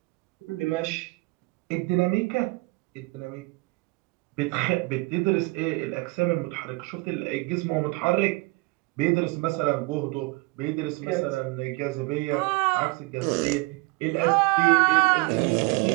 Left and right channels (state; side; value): quieter; left; 25.2 dB